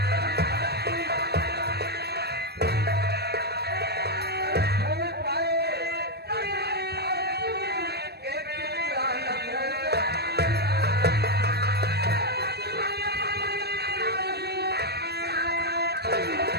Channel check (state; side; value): late; left; 0.47 ms